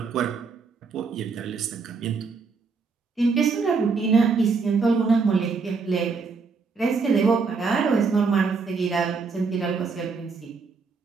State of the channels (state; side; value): quieter; left; 4.8 dB